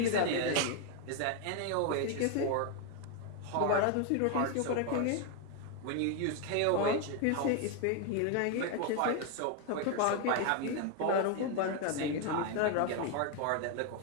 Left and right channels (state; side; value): different; both; correlation 0.01